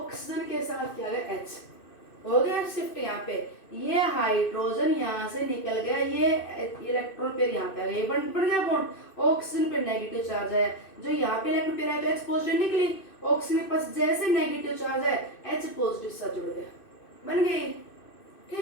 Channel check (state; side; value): late; right; 2.6 ms